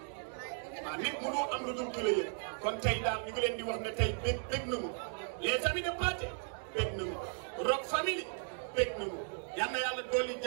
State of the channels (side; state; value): left; silent; 54 dB below the other